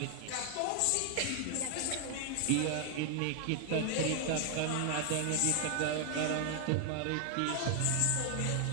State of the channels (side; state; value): both; different; correlation 0.00